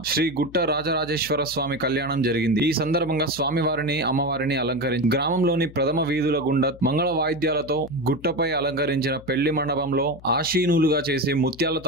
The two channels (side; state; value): left; noise; hum, 20 dB below the sound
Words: శ్రీ గుట్ట రాజరాజేశ్వర స్వామి కళ్యాణం జరిగింది. ఈ సందర్భంగా స్వామివారిని అమ్మవారిని అలంకరించి గ్రామంలోని ప్రథమ వీధుల గుండా మంగళ వాయిద్యాలతో గుట్టపై అలంకరించిన పెళ్లి మండపంలో ఆశీనులుగా చేసి ముత్యాల